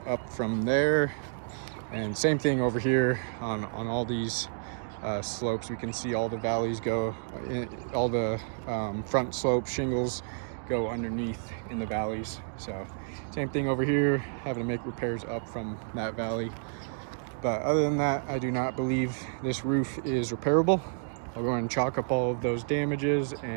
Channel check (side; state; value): left; silent; digital silence